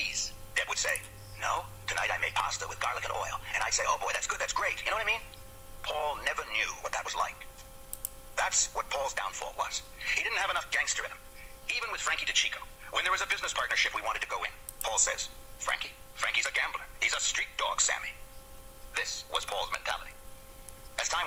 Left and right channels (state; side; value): identical; both; correlation 1.00